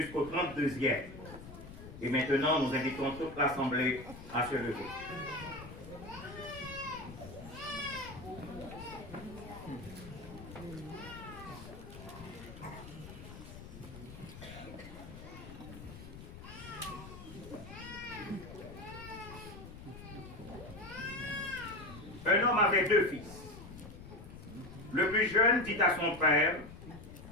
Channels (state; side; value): noise; left; rumble, 14 dB below the sound